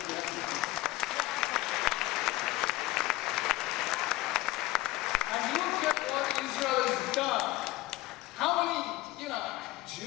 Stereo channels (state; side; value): quieter; right; 18.5 dB